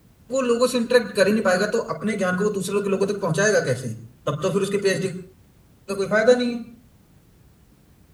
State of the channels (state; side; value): identical; both; correlation 1.00